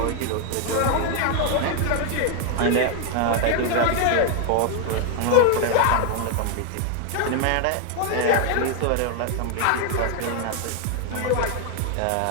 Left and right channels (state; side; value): different; both; correlation 0.00